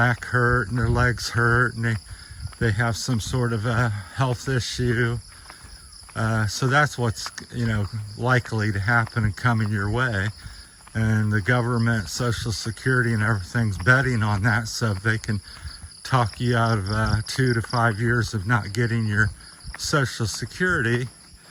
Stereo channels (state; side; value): identical; both; correlation 1.00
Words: hurt and their legs hurt and they have some sort of a health issue. So that's what's, likely to happen and coming your way. And the government, Social Security and everything's betting on that so they can talk you out of 2 to 5 years of not getting your Social Security.